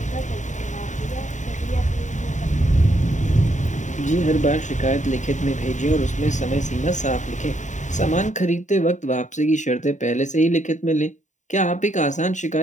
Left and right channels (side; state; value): right; late; 0.35 ms